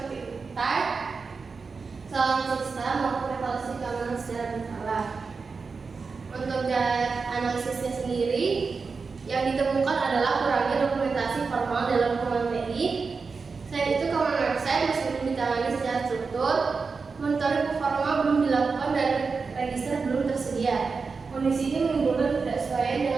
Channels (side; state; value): left; quieter; 4.8 dB